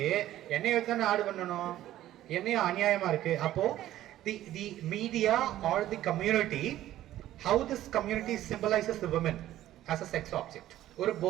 என்னைய வச்சு ஆடு பண்ணணும், என்னைய அநியாயமா இருக்கு. அப்போ the media or the community, how this community symbolizes the women as a sex object. ஒரு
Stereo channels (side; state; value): left; quieter; 13.6 dB